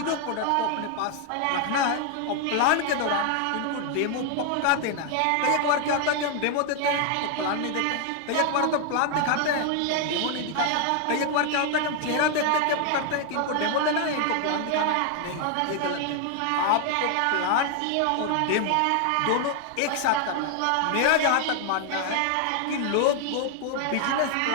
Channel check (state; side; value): different; both; correlation 0.00